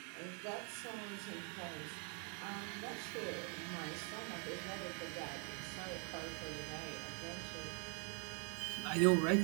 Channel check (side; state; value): left; quieter; 38.8 dB